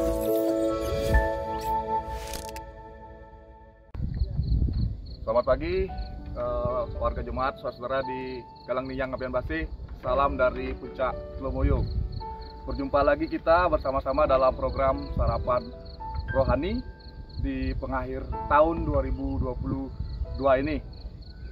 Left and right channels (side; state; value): both; identical; correlation 1.00